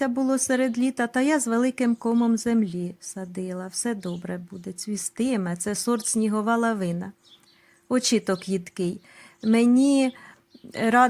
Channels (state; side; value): identical; both; correlation 1.00